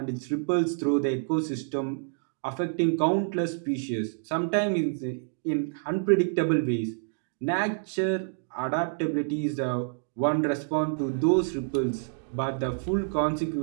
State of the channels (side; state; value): left; silent; digital silence